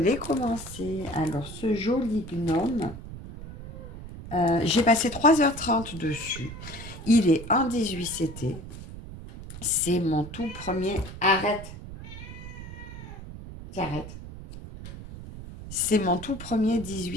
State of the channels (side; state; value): right; noise; rumble, 12 dB below the sound